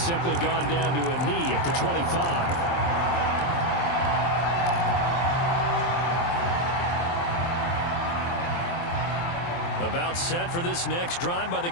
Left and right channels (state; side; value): late; right; 23 ms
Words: gone down to a knee at the 25. About set for this next drive by the